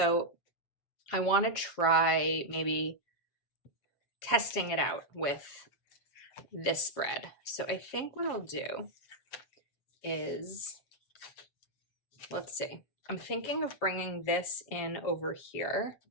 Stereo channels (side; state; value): right; late; 7.6 ms